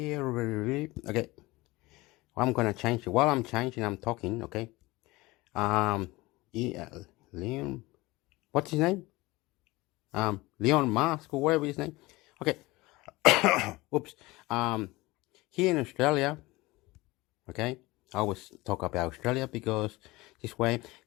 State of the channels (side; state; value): right; quieter; 21.1 dB